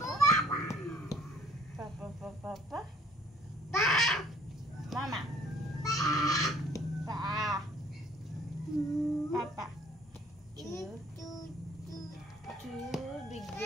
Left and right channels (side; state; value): both; normal; correlation 0.58